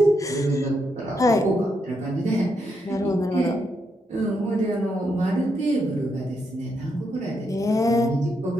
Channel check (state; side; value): normal; both; correlation 0.80